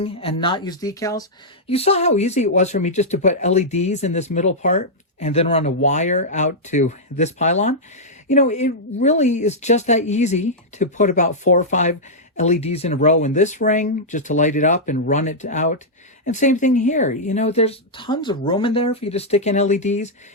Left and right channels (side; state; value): both; normal; correlation -0.08